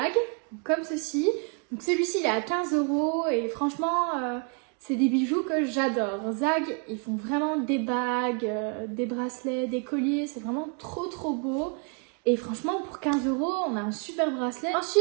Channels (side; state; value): left; quieter; 38.5 dB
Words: comme ceci. Donc celui-ci, il est à 15 € et franchement, c'est des bijoux que j'adore. Zag, ils font vraiment des bagues, des bracelets, des colliers, c'est vraiment trop beau. Et franchement, pour 15 €, on a un super bracelet.